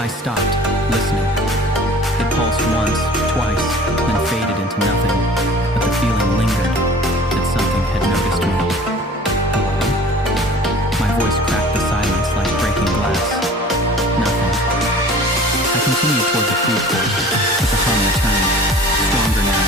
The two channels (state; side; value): normal; both; correlation 0.45